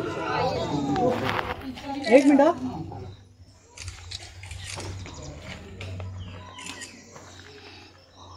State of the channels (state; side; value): identical; both; correlation 1.00